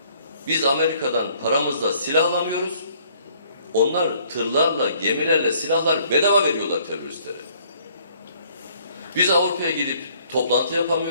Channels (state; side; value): inverted; both; correlation -0.62